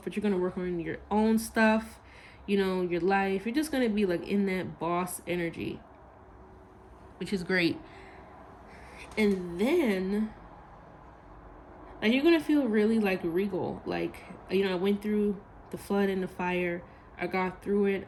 but you're going to work on your own stuff, your life. You're just going to be like in that boss energy, which is great. And then, like, you're going to feel really like regal. Like, I went through the flood and the fire. I got through it.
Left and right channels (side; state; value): both; identical; correlation 1.00